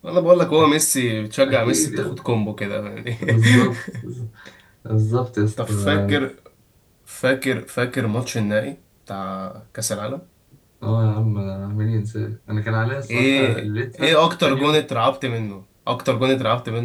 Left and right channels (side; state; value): both; identical; correlation 1.00